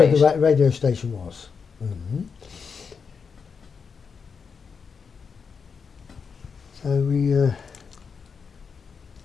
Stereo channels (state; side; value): quieter; right; 5.8 dB